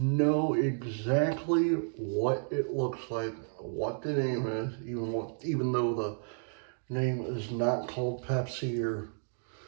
exactly what it looks like, what the name is, even though the name is not called Pepsi or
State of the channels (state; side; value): silent; left; digital silence